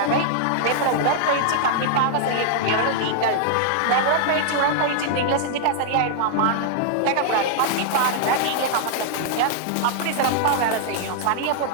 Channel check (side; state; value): both; different; correlation -0.01